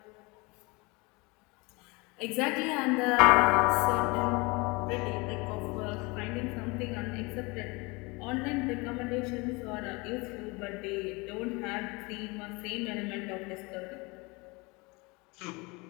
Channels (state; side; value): quieter; right; 26.3 dB